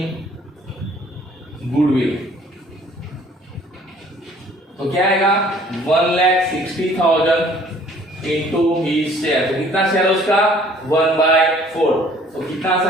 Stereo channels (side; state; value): both; normal; correlation 0.56